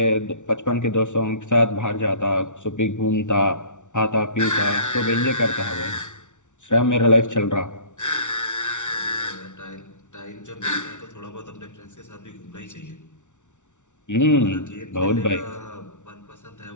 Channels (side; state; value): right; late; 0.85 ms